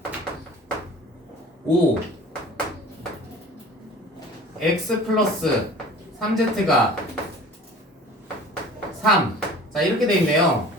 5 x 플러스 3z가 3. 자, 이렇게 돼 있네요.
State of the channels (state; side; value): normal; both; correlation 0.44